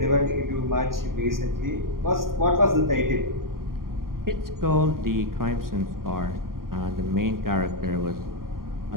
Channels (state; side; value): late; left; 0.91 ms